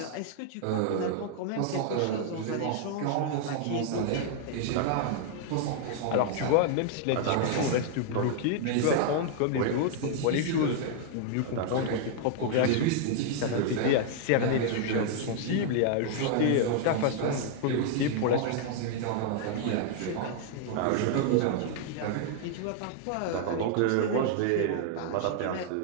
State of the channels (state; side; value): different; both; correlation -0.01